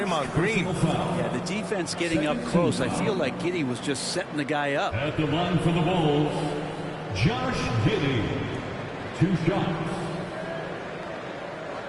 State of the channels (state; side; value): identical; both; correlation 1.00